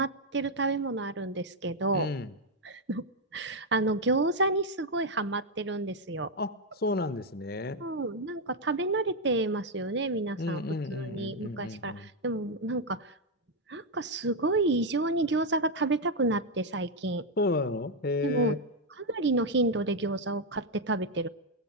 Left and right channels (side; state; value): both; normal; correlation 0.02